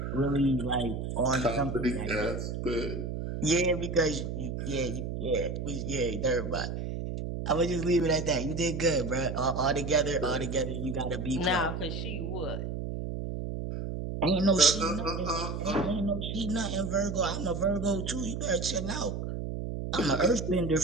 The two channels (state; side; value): noise; right; hum, 4 dB below the sound